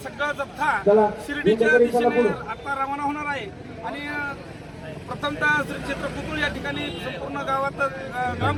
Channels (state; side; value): identical; both; correlation 1.00